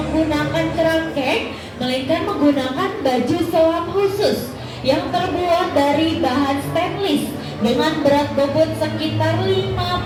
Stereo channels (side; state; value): both; identical; correlation 1.00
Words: kerangkeng, melainkan menggunakan baju selam khusus yang terbuat dari bahan stainless dengan berat bobot sekitar